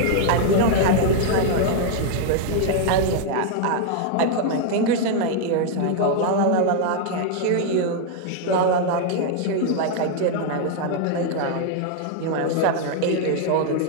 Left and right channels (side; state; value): both; different; correlation 0.00